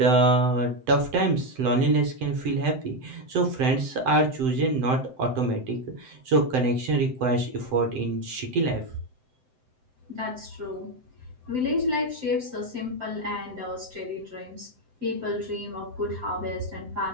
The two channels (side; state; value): left; late; 7.8 ms